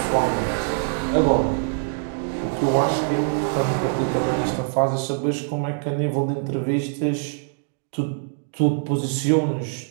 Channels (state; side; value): silent; left; digital silence